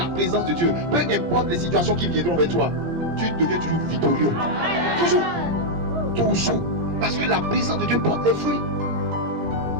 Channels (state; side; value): late; left; 17 ms